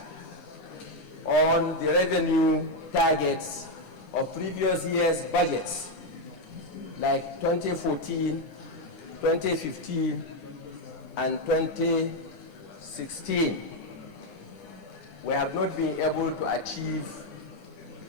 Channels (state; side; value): late; right; 9.9 ms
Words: on the revenue targets of previous years' budgets, like 2014, 2015, and 2016, we have not been able to achieve